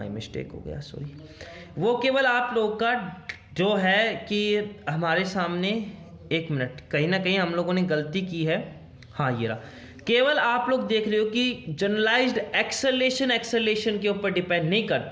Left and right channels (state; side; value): identical; both; correlation 1.00